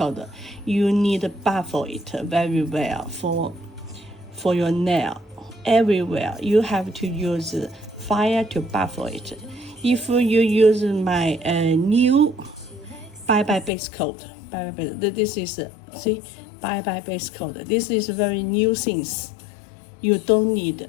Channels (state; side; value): drops out; right; at 13.7 s